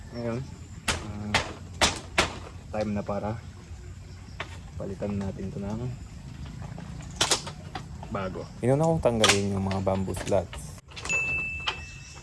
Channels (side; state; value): both; identical; correlation 1.00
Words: ngayon time na para palitan natin ito ng bago. Inuna kong tanggalin yung mga bamboo slats.